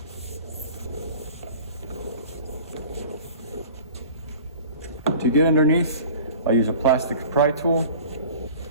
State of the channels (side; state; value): both; inverted; correlation -0.43